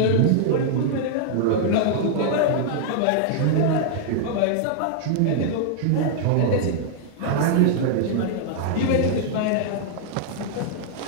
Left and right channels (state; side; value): different; both; correlation -0.01